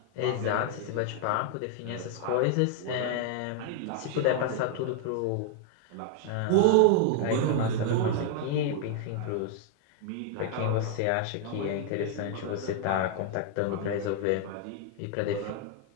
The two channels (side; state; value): both; different; correlation 0.00